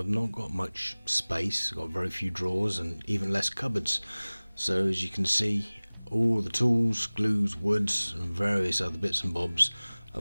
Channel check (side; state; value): both; inverted; correlation -1.00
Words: not got much space. I've got very few drawers and even less cupboards. So as you can see, all the tools, glues, woods and various other bits and bobs